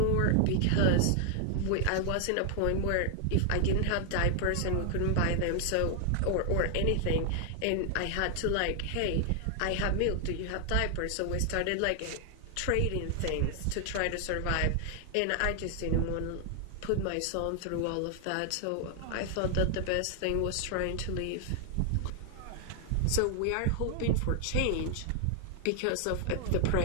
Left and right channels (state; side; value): different; both; correlation 0.00